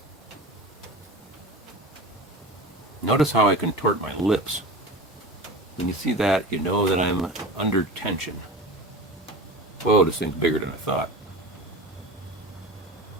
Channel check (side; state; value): both; normal; correlation 0.33